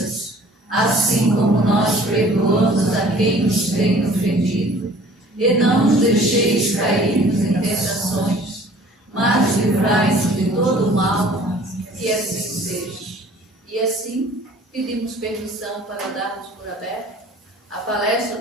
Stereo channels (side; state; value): both; normal; correlation 0.51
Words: assim como nós perdoamos a quem nos tem ofendido. E não nos deixeis cair em tentações, mas livrai-nos de todo o mal, que assim seja. E assim, pedimos permissão para darmos por aberto a